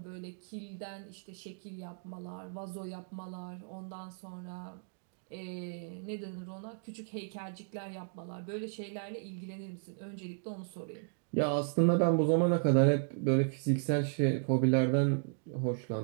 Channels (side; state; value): left; silent; digital silence